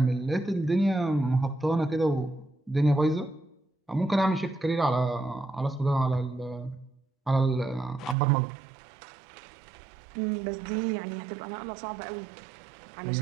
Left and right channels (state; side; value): drops out; left; at 8.2 s